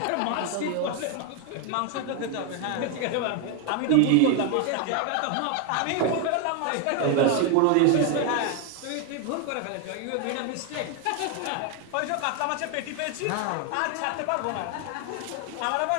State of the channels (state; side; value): different; both; correlation 0.01